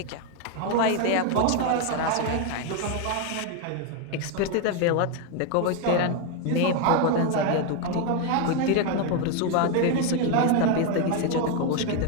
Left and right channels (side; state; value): both; different; correlation 0.01